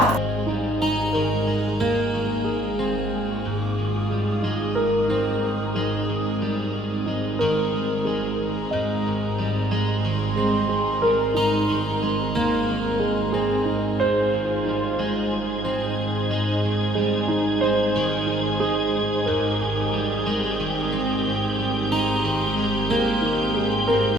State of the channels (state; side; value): normal; both; correlation 0.65